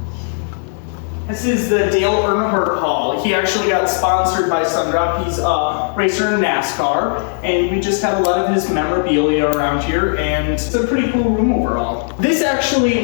This is the Dale Earnhardt Hall. He actually got sponsored by Sundrop. He's a racer in NASCAR, and we just have a lot of his memorabilia around here, and it's a pretty cool room overall. This actually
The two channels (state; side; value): silent; right; digital silence